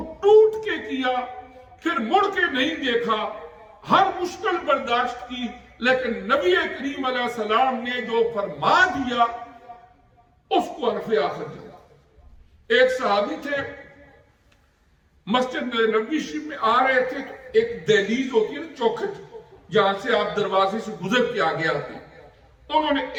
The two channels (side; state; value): both; identical; correlation 1.00